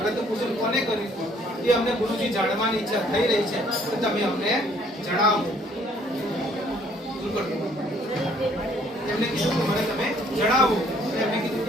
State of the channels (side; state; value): both; normal; correlation 0.62